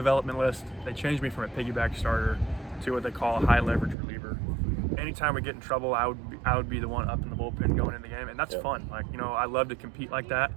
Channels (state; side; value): drops out; left; at 4.0 s